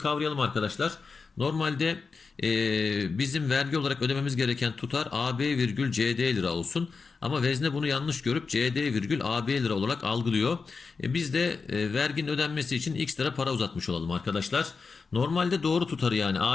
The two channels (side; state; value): right; quieter; 4.8 dB